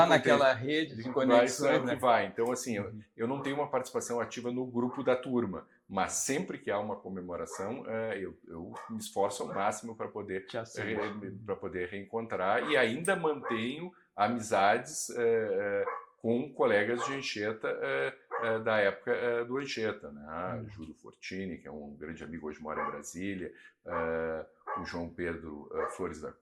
naquela rede de conexões, que vai. Então, assim, eu não tenho uma participação ativa no grupo da turma, mas sempre que há uma comemoração, eu me esforço ao máximo para poder reencontrar, e ainda mantenho amizades com colegas de Anchieta da época do Anchieta, né? Júlio Fortini, que é um grande amigo, hoje mora em Brasília, o João Pedro Flores da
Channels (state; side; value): identical; both; correlation 1.00